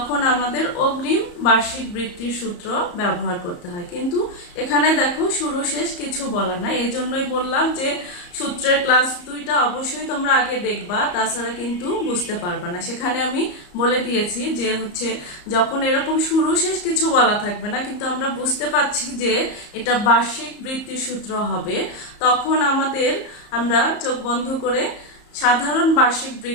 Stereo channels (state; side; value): late; right; 34 ms